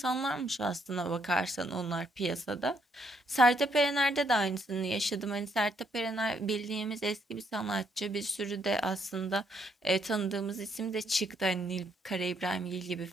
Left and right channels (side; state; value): both; normal; correlation 0.72